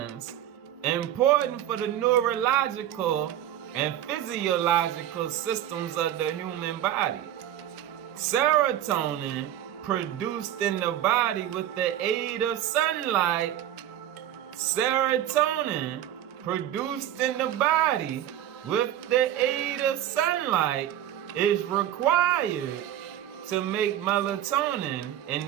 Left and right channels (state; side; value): quieter; left; 11.7 dB